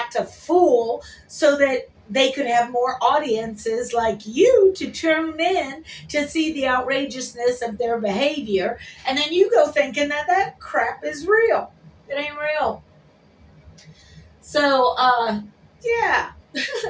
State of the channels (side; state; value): both; identical; correlation 1.00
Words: a fool so that they could have more audiences like you to tune in to see the outrageousness of their behavior. And then you go thinking that that crap is real. It ain't real. So, yeah.